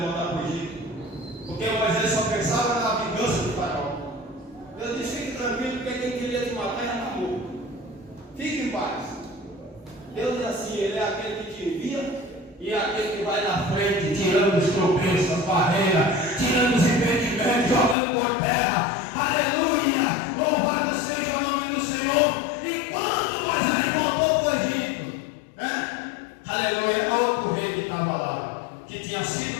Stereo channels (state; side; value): drops out; right; at 17.9 s